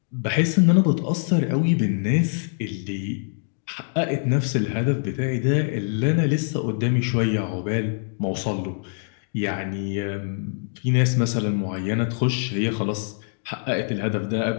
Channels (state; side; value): silent; right; digital silence